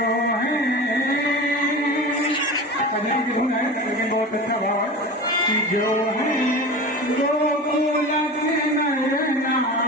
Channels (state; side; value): normal; both; correlation 0.31